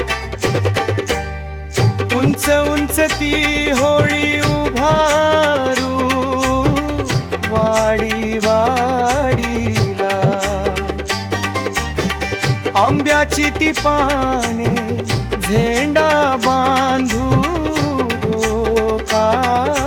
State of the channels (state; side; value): identical; both; correlation 1.00